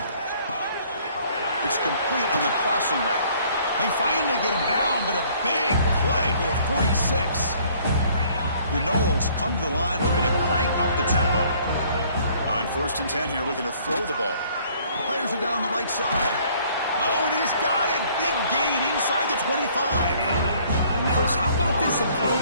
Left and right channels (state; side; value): inverted; both; correlation -0.59